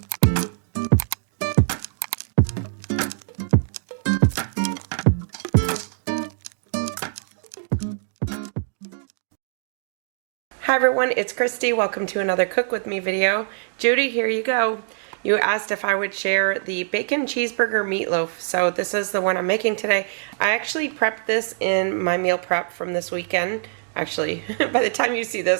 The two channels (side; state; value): left; silent; digital silence